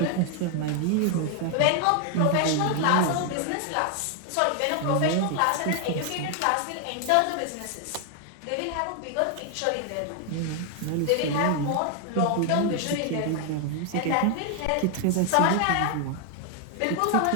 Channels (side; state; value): both; different; correlation 0.00